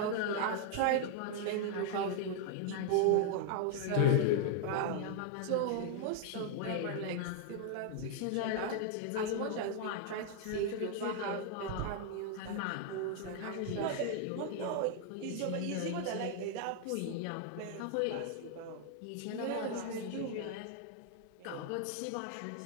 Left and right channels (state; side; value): different; both; correlation 0.00